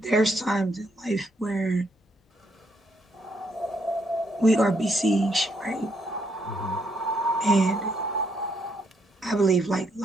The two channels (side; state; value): both; normal; correlation 0.74